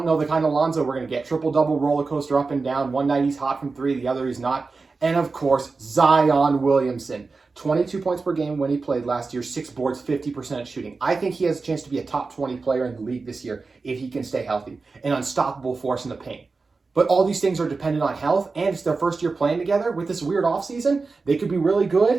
know the kind of Lonzo we're going to get. Triple-double roller coaster up and down. One night he's hot from three, the other he's not. And, of course, Zion Williamson. 22 points per game when he played last year, 6 boards, 50% shooting. I think he has a chance to be a top 20 player in the league this year if he can stay healthy. An unstoppable force in the paint. But all these things are dependent on health, and it's their first year playing together with this weird offseason. They could be really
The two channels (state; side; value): quieter; left; 4.1 dB